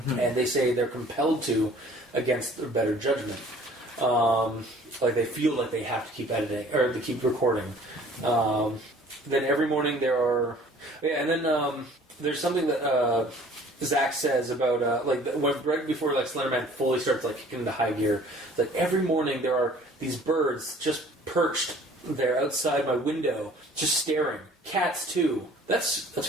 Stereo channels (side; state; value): both; normal; correlation 0.52